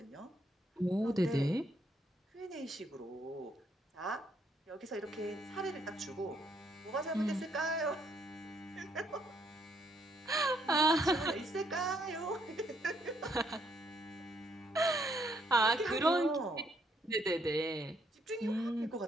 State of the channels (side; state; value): both; normal; correlation 0.71